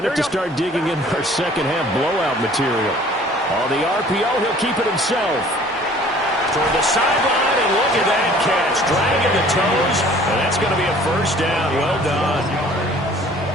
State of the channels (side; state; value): both; normal; correlation 0.52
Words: have to start digging in our second-half blowout material. On the RPO, he'll keep it himself. Toward the sideline, and look at that catch. Dragging the toes, and that's going to be a 1st down. Well done.